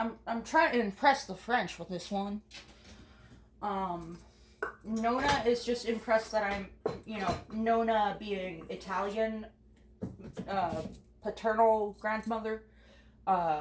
trying to impress the French with this one. Nona is just impressed that I'm, Nona being Italian, paternal grandmother,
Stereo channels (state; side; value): identical; both; correlation 1.00